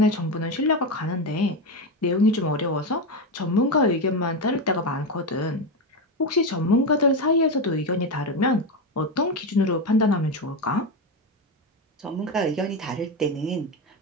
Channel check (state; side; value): normal; both; correlation 0.14